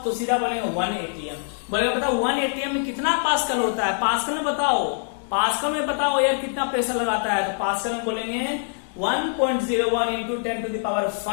तो सीधा बोलेंगे 1 एटीएम। बोलेगा बताओ 1 एटीएम में कितना पास्कल होता है, पास्कल में बताओ, पास्कल में बताओ एयर कितना प्रेशर लगाता है। तो पास्कल में बोलेंगे 1.01 इंटू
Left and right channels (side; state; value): right; silent; 61 dB below the other